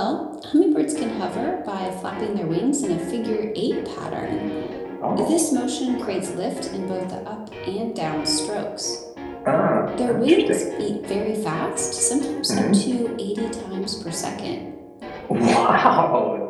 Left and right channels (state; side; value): identical; both; correlation 1.00